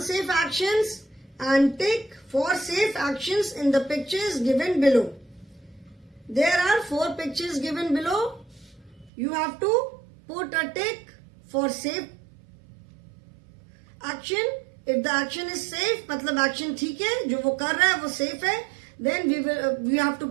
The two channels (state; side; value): drops out; left; at 9.1 s